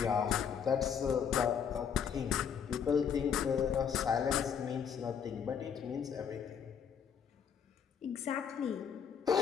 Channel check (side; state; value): right; quieter; 7.5 dB